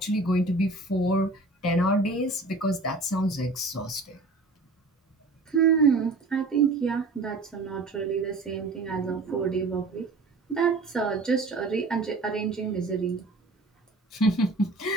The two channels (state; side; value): quieter; left; 3.2 dB